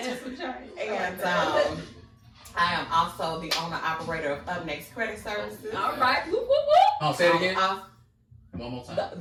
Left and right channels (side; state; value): both; identical; correlation 1.00